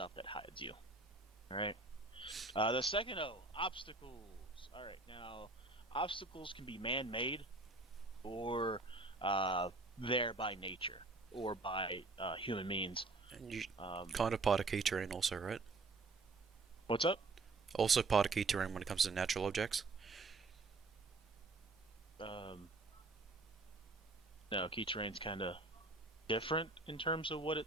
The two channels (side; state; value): left; quieter; 3.4 dB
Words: that hides you. All right. The second O, obstacles. All right, now obstacles can be man-made or there by nature or by human means. And you kind of part of key terrain also, right? What's up? Also part of key terrain when it comes to natural objects. No, key terrain's kind of different in terms of what